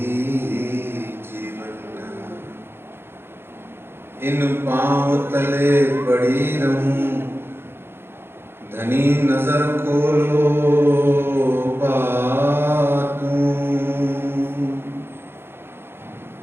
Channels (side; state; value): left; late; 0.11 ms